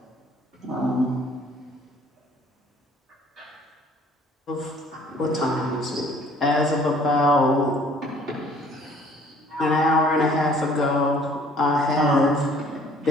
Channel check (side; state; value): both; normal; correlation 0.56